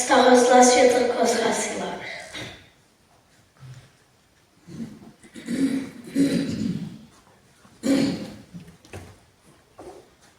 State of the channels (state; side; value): identical; both; correlation 1.00